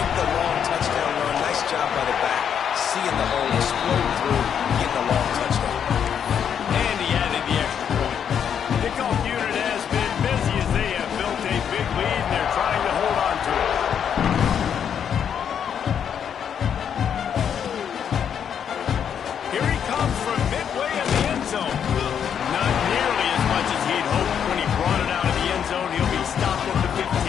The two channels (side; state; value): right; quieter; 8.2 dB